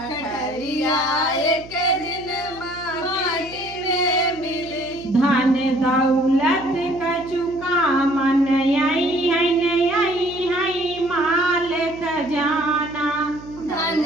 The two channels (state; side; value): noise; right; hum, 18 dB below the sound